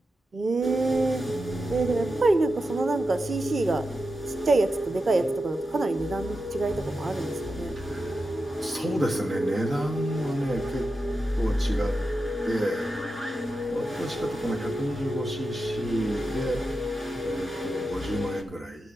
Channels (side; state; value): both; normal; correlation 0.90